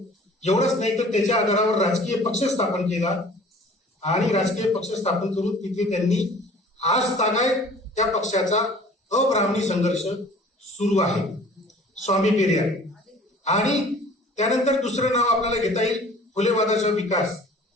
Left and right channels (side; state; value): both; normal; correlation 0.48